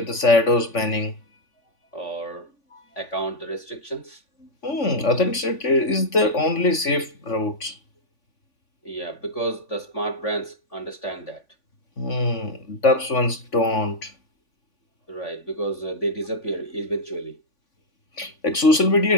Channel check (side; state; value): right; late; 3.5 ms